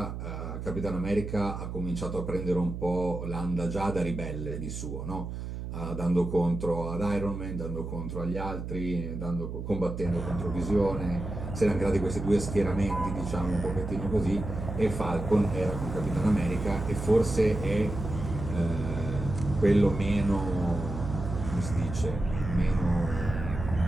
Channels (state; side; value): noise; right; hum, 7 dB below the sound